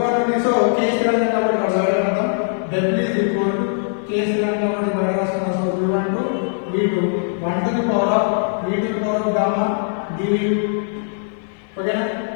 నుండి so k స్థిరంగా కాబట్టి బయట రాద్దాం. w is equal to k స్థిరంగా కాబట్టి బయట రాస్తున్నాం. So v1 to v2 1 to the power of v to the power of gamma dv. ఓకేనా?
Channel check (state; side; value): silent; right; digital silence